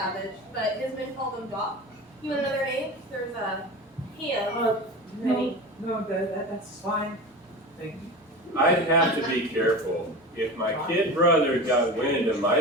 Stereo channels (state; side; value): normal; both; correlation 0.30